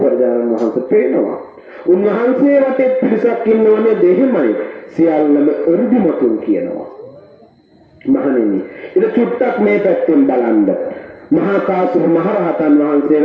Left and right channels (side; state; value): both; identical; correlation 1.00